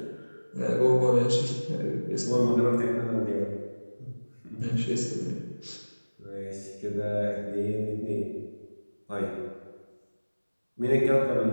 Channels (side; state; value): both; inverted; correlation -1.00